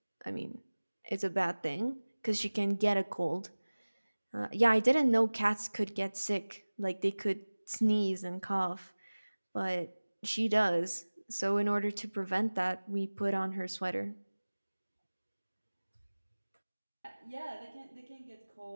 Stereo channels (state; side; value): inverted; both; correlation -1.00